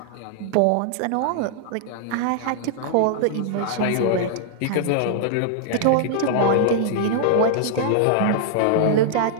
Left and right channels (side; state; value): both; different; correlation -0.01